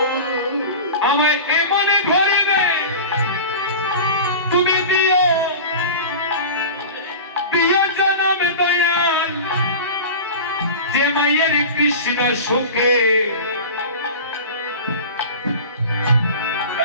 আমায় এমনে ঘরে তুমি দিও প্রিয় জনম দয়াল যে মায়ের কৃষ্ণ সুখে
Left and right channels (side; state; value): both; inverted; correlation -0.33